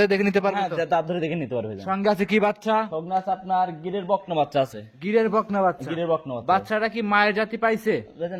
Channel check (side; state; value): both; identical; correlation 1.00